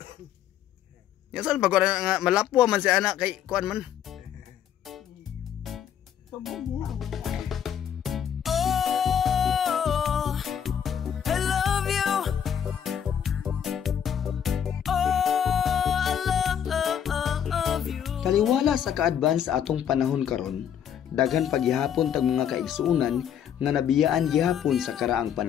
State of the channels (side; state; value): right; quieter; 9.0 dB